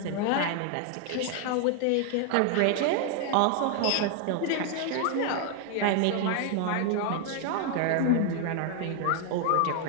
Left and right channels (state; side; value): different; both; correlation 0.00